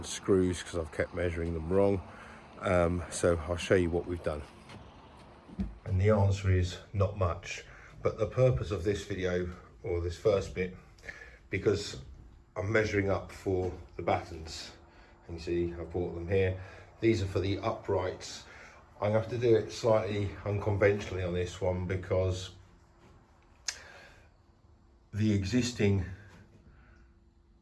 screws because I've kept measuring them wrong. So I'll show you what we've done. And the answer is not much. But the purpose of this video, or this first bit, because I'm measuring up for the battens. And you see I bought them here. These are for the uprights. I'm going to have to do it slightly unconventionally on this one because the existing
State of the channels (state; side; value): identical; both; correlation 1.00